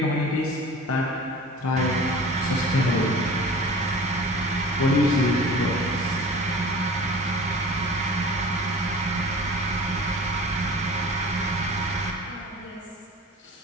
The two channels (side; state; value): both; normal; correlation 0.41